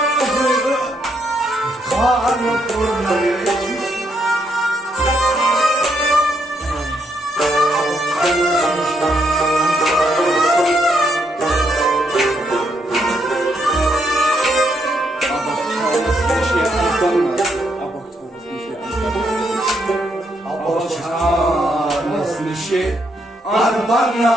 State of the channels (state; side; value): normal; both; correlation 0.76